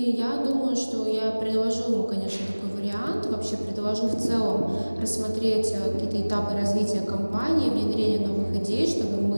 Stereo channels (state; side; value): inverted; both; correlation -1.00